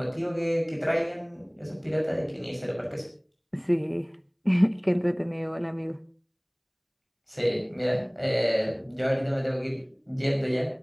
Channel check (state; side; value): identical; both; correlation 1.00